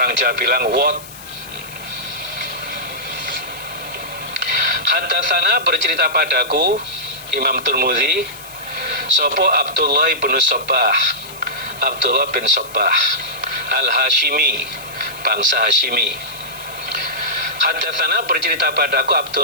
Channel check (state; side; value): noise; left; hiss, 17 dB below the sound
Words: Jawa bilang wot. Haddatsana, bercerita padaku Imam Tirmidzi, sopo Abdullah bin Sabbah, Abdullah bin Sabbah Al-Hashimi, bangsa Hashimi. Hadatsana bercerita padaku